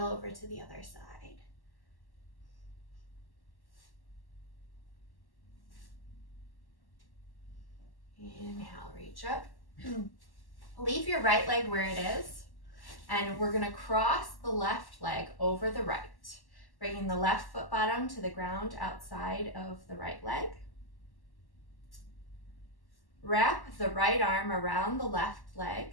over to the other side. Inhale, reach up. Leave your right leg where it is, and we're going to cross the left leg over the right. Bringing the left foot bottom to the ground outside of the right leg. Wrap the right arm around the left leg.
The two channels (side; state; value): right; late; 1.1 ms